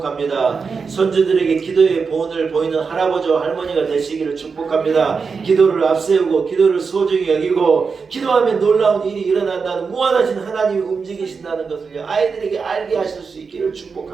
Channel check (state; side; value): quieter; left; 5.2 dB